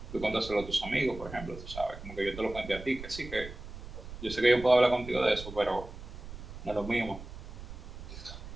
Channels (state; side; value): noise; right; rumble, 12 dB below the sound